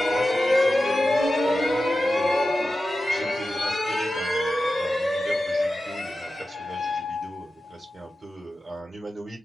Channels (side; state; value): both; normal; correlation 0.92